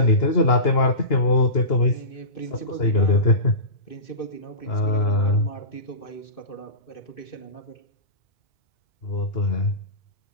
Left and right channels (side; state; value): right; late; 2.9 ms